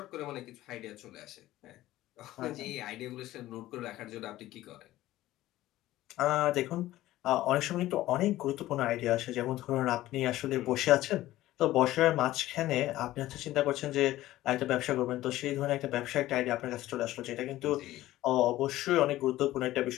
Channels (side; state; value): right; quieter; 15.6 dB